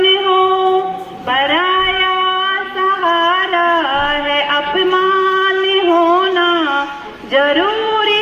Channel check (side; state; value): both; identical; correlation 1.00